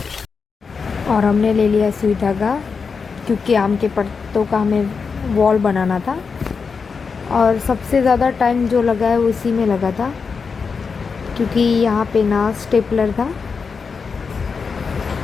और हमने ले लिया सुई धागा, क्योंकि आम के पत्तों का हमें वॉल बनाना था। और सबसे ज़्यादा टाइम जो लगा है उसी में लगा था, क्योंकि यहाँ पे ना स्टेपलर था,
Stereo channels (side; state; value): right; quieter; 5.3 dB